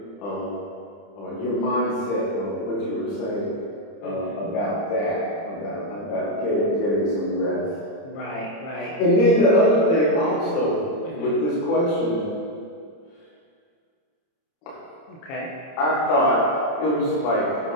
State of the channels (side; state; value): right; late; 30 ms